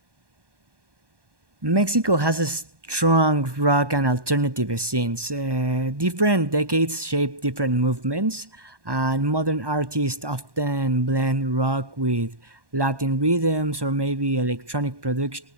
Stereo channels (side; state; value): left; late; 1.1 ms